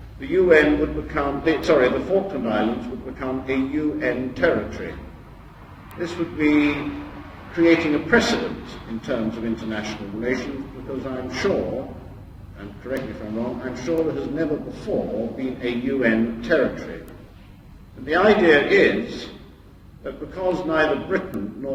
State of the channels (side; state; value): both; identical; correlation 1.00